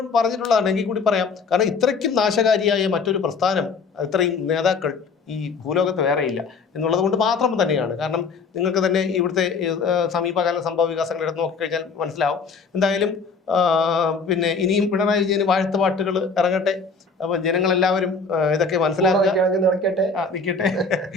പറഞ്ഞിട്ടുള്ളതാണ്. എങ്കിൽ കൂടി പറയാം. കാരണം ഇത്രയ്ക്കും നാശകാരിയായ മറ്റൊരു പ്രസ്ഥാനം, ഇത്രയും നേതാക്കൾ ഈ ഭൂലോകത്ത് വേറെയില്ല എന്നുള്ളത് കൊണ്ട് മാത്രം തന്നെയാണ്. കാരണം നിങ്ങൾക്ക് തന്നെ ഇവിടുത്തെ സമീപകാല സംഭവ വികാസങ്ങൾ എടുത്ത് നോക്കിക്കഴിഞ്ഞാൽ മനസ്സിലാവും. എന്തായാലും പിന്നെ ഇനിയും പിണറായി വിജയന് വാഴ്ത്തുപാട്ടുകൾ ഇറങ്ങട്ടെ. അപ്പൊ ജനങ്ങളെല്ലാവരും ഇതൊക്കെ മനസ്സിലാക്കുക, നിൽക്കട്ടെ.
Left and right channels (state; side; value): quieter; right; 4.6 dB